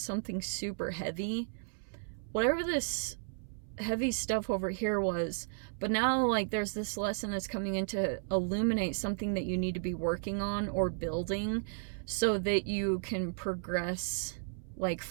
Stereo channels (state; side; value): silent; left; 55 dB below the other